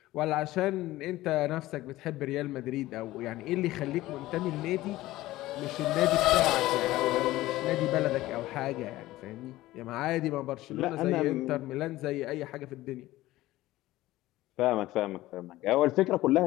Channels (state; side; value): quieter; right; 16.9 dB